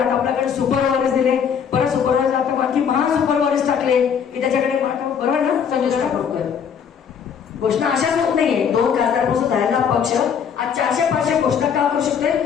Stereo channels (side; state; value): right; quieter; 7.4 dB